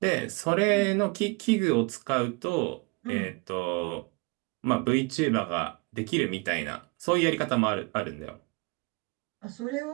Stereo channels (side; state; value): left; quieter; 28.5 dB